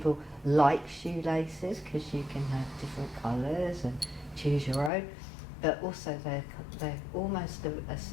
like shoelaces, because you can have different colours and choose your own, but also they're almost a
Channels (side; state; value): right; drops out; at 4.9 s